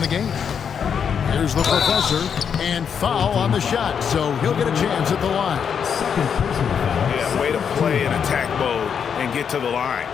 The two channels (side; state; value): right; quieter; 7.3 dB